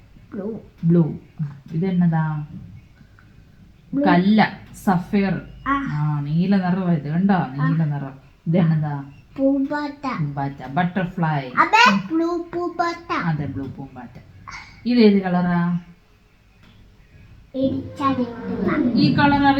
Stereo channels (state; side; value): identical; both; correlation 1.00